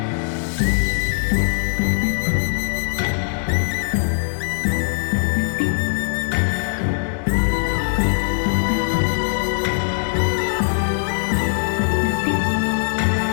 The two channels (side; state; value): right; silent; digital silence